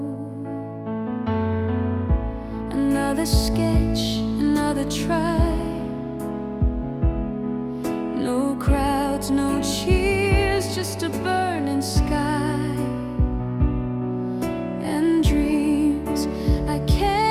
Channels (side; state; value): both; identical; correlation 1.00